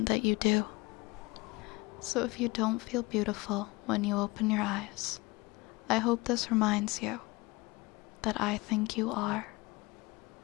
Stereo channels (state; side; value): quieter; right; 23.8 dB